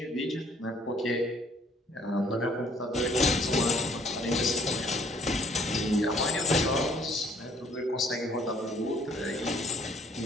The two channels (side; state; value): both; normal; correlation 0.60